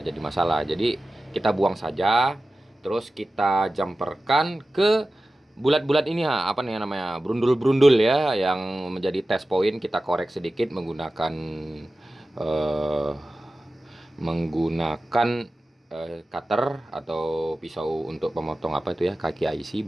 masalah. Jadi kita buang saja, terus kita jumperkan ke bulat-bulat ini apa nih namanya? Brundul-brundul ya yang menjadi test point, kita korek sedikit menggunakan eh, menggunakan cutter atau pisau untuk pemotong apa itu ya, kaki IC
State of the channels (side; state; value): both; normal; correlation 0.95